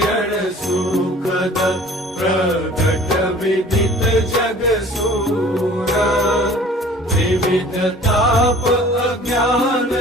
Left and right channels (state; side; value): normal; both; correlation 0.48